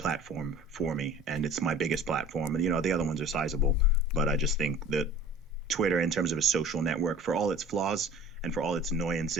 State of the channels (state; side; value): normal; both; correlation 0.44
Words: for me, and it's my biggest platform. And the other ones are sizable, but I just think that Twitter, in terms of a social network, for all its flaws and for all its